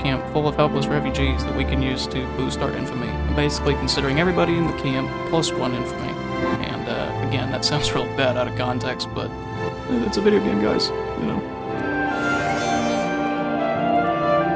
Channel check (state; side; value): identical; both; correlation 1.00